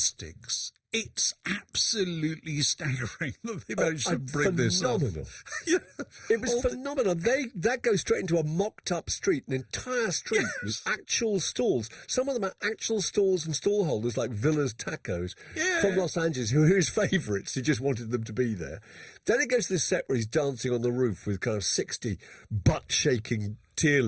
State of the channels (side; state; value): both; identical; correlation 1.00